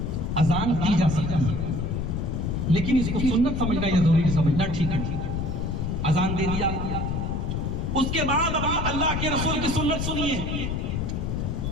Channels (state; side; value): noise; left; rumble, 1 dB below the sound